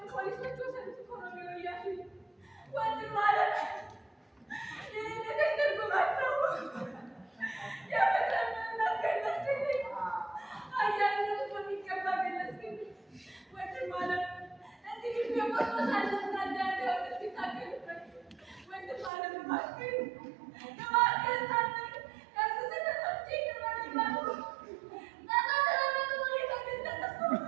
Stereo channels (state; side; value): drops out; left; at 19.1 s